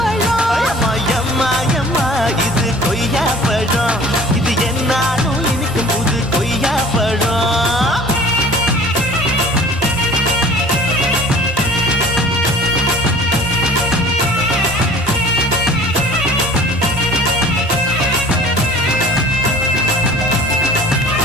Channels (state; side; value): normal; both; correlation 0.47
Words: அம்மா எம்மா எம்மா இது கொய்யா பழம், இது என்னாலும் இனிக்கும் புது கொய்யா பழம்.